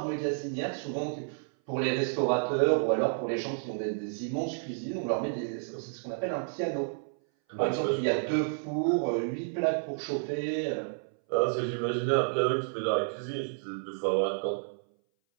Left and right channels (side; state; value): left; silent; 57 dB below the other